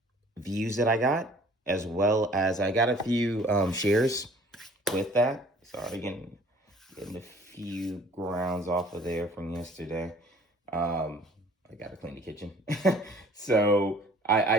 views that I got, as well as I got a few shares with that. Sorry, getting a few grounds off of there from yesterday. I got to clean the kitchen. So I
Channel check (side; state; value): both; normal; correlation 0.53